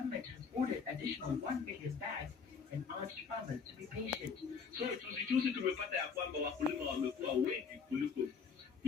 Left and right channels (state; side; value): quieter; right; 5.8 dB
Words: has ordered additional 1 million bags and urged farmers to be patient. So tusijuzi tumepata ya kwamba wakulima wamekuwa wengi kuliko